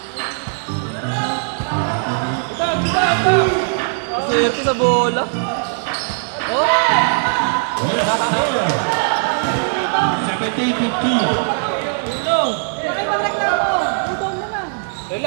Swerte sa bola. Oh! Second team 15. Bakit magreklamo? Udong mo lang.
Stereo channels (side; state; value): left; silent; 67 dB below the other